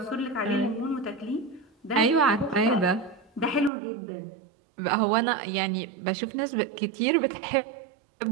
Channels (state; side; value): drops out; left; at 3.7 s